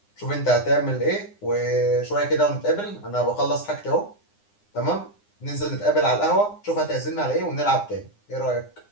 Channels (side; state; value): right; late; 9.8 ms